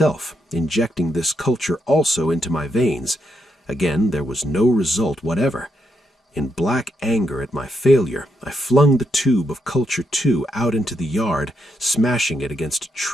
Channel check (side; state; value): both; normal; correlation 0.80